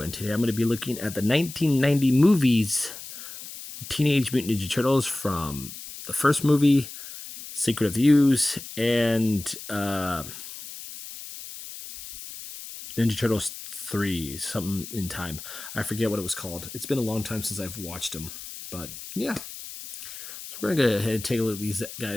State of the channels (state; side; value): noise; left; hiss, 12 dB below the sound